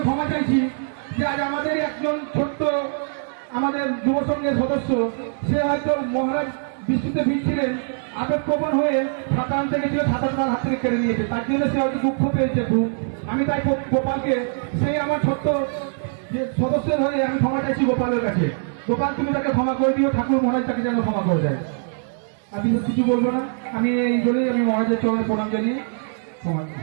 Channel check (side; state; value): left; silent; digital silence